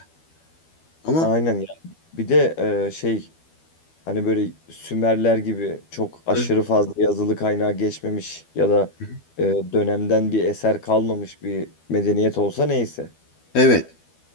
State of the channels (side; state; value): right; late; 12 ms